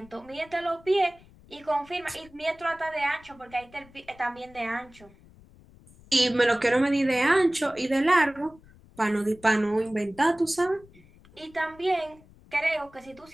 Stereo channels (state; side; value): noise; left; rumble, 25 dB below the sound